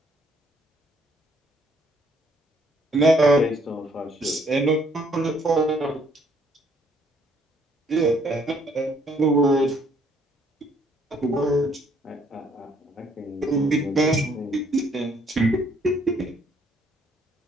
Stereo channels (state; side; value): normal; both; correlation 0.65